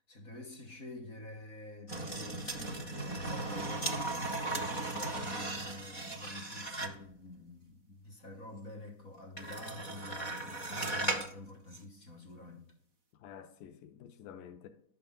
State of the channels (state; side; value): late; right; 4.1 ms